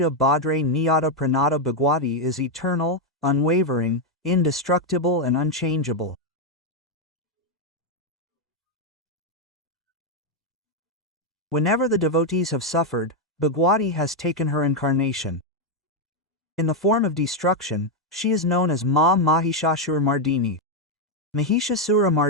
Bhadre Niyata Pranata Bhagwati is eternal, unwavering, indestructible and unchangeable. Whenever the devotees have suffered, Bhagwati has taken her incarnation. In the form of destruction, she is known as Ma Mahishasura Mardini. Mahishasura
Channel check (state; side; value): normal; both; correlation 0.02